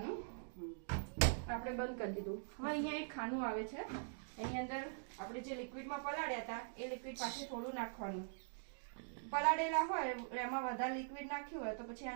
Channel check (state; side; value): silent; left; digital silence